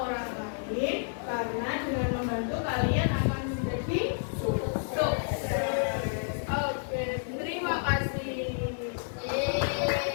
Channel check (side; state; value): right; silent; digital silence